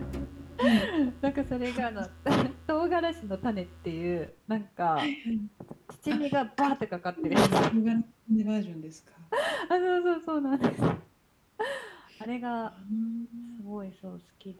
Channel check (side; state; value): both; identical; correlation 1.00